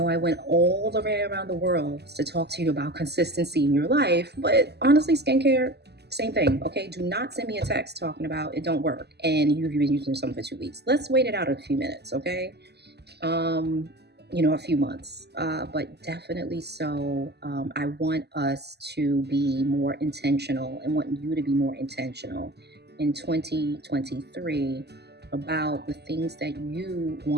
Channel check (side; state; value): left; late; 0.48 ms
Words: I went all the way around the world to talk to you about consistency in your life, but honestly, skincare, same thing. Okay? Do not send me a text talking about it don't work and you've been using something for 2 weeks. Let's wait it out a few minutes. Okay? A few months, but definitely so. I want us to be more intentional and want you to be more intentional in 2023 about the things that you